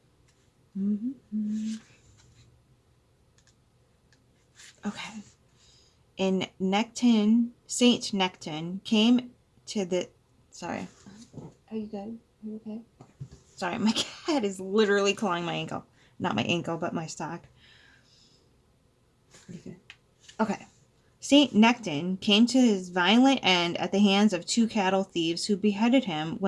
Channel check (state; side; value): identical; both; correlation 1.00